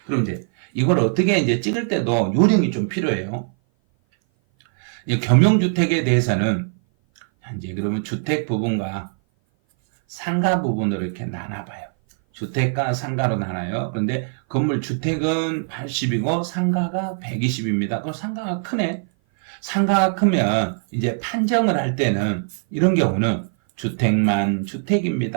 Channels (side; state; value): left; silent; 57 dB below the other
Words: 그럼 이제 이걸 어떻게 이제 찍을 때도 요령이 좀 필요해요. 겸용주택에 대해서는 이제 그러면 주택 부분과 상가 부분으로 이렇게 나눠봐요. 주택과 상가로 나눠요. 그런데 건물 주택은 80이고 상가가 120입니다. 그럼 상가가 크네. 상가가 크면 이제 판정을 할 때는 이런 경우는 주택만